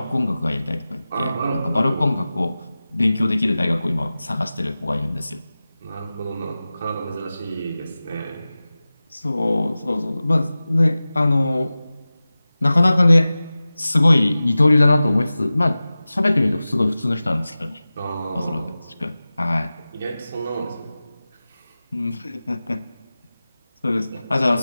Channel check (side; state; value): both; inverted; correlation -0.96